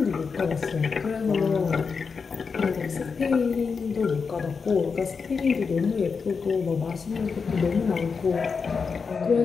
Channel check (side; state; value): right; quieter; 5.3 dB